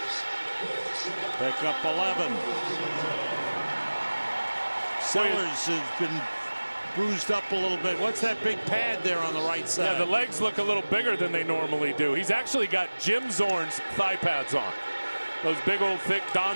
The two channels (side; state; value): both; inverted; correlation -1.00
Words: Pick up 11. Sellers has been bruised up a little bit. What's that big pad there on the right side? Yeah, the legs look a little bigger than they normally do. He's actually got Jim Zorn's thigh pads on. Those big old thick